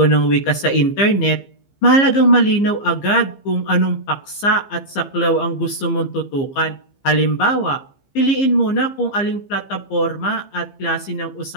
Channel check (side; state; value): right; late; 15 ms